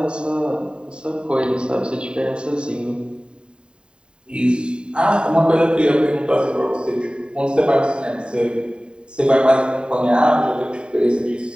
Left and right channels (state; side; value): late; left; 0.051 ms